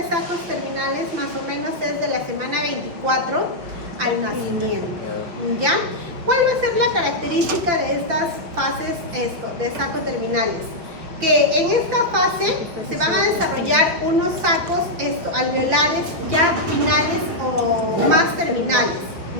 sacos terminales más o menos es de la semana 24 al nacimiento, ¿ya? ¿Cuál va a ser la característica de estas fases de sacos terminales? Que en esta fase se van a desarrollar unos sacos alveolares ya finales o más terminales,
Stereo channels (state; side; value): late; left; 5.7 ms